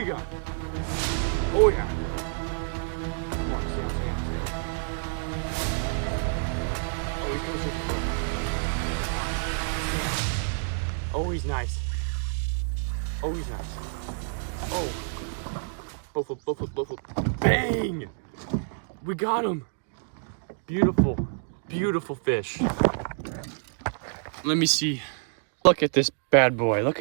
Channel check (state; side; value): silent; left; digital silence